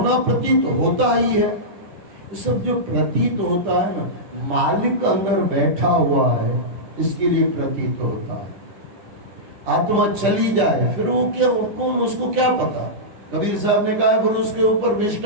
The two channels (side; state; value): left; late; 10 ms